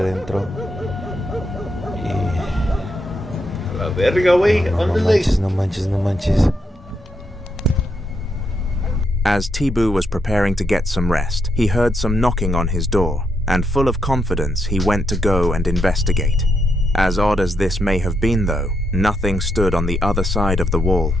Y La verga, güey. no manches. As Tibu was preparing to get some rest, he heard some knocking on his door, and full of confidence, he went to go and investigate. As odd as this may have been, though, nothing stood on the other side of the wall,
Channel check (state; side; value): normal; both; correlation 0.80